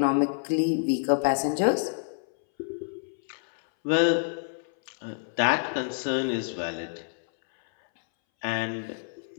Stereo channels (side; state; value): right; silent; 60 dB below the other